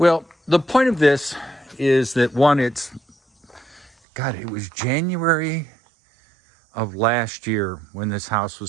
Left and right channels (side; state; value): left; drops out; at 3.9 s